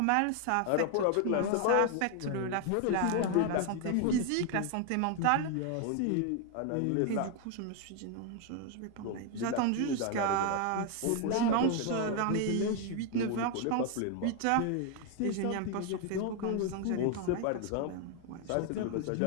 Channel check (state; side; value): different; both; correlation 0.01